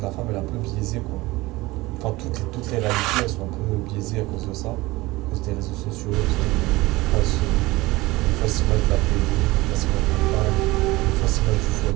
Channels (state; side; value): quieter; left; 20.4 dB